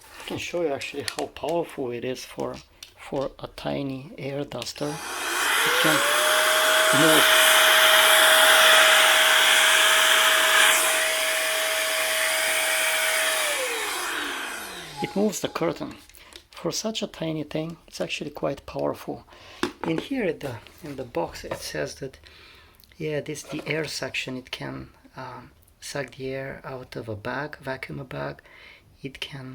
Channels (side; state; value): both; identical; correlation 1.00